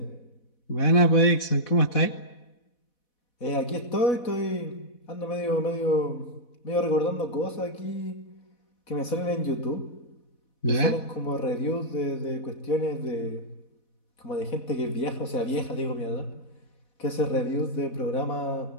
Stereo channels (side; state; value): right; late; 4.1 ms